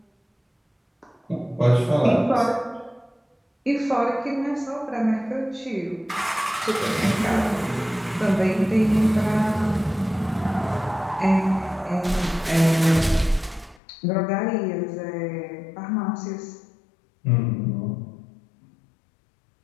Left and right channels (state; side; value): drops out; right; at 13.8 s